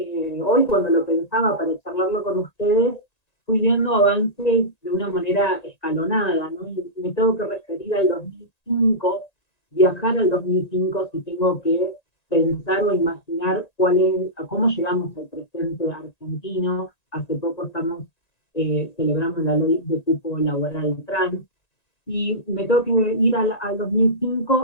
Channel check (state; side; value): late; right; 1.9 ms